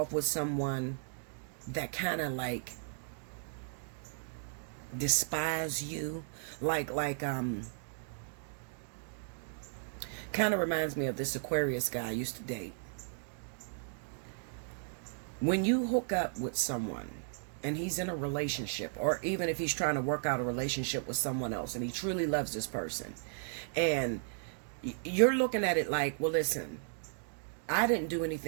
with someone that kind of like despise you? Like kind of reminds me of this Aquarius guy I used to date. When you hook up with someone and he's in a relationship, or even if he's trying to work out a relationship with someone else and he truly loves this person, and you're looking at it like, well, listen, I didn't do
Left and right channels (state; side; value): silent; left; digital silence